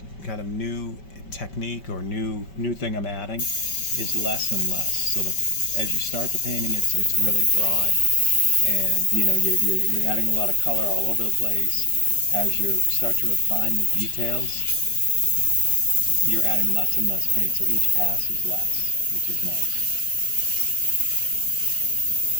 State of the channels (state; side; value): late; right; 5.2 ms